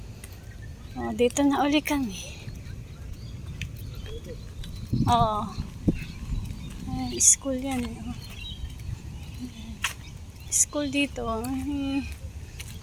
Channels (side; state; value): both; identical; correlation 1.00